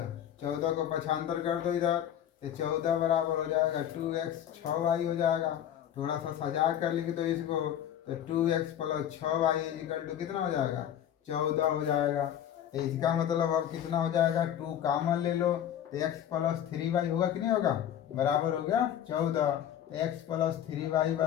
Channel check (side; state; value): right; quieter; 10.3 dB